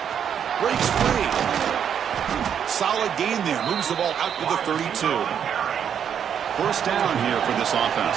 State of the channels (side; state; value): left; quieter; 8.3 dB